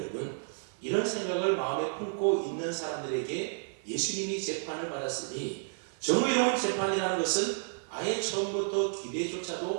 이런 생각을 마음에 품고 있는 사람들에게 예수님이 재판을 받았으니 정의로운 재판이라는 것은 아예 처음부터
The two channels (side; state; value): left; silent; 57 dB below the other